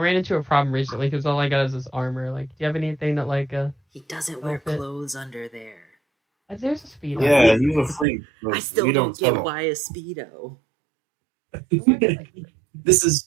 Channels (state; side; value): drops out; left; at 8.1 s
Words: into a problem recently because all I got is this armor. Like, do you have anything that He doesn't wear outfit? clothes under there. There's a speedo. Yeah, you're a freak. I still we don't tell get him. why a speedo. This